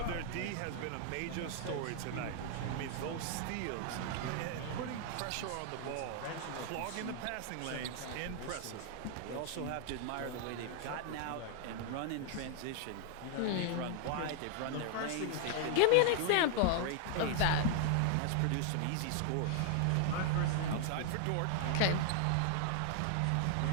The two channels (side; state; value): both; different; correlation 0.00